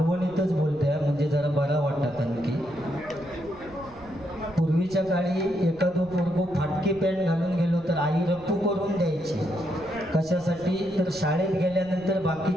बोलते म्हणजे जरा बरा वाटतात आणखी. पूर्वीच्या काळी एखादं पोरगो फाटकी पॅन्ट घालून गेलो तर आई रप्पू करून द्यायची. कशासाठी तर शाळेत गेल्यानंतर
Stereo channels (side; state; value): right; noise; rumble, 23 dB below the sound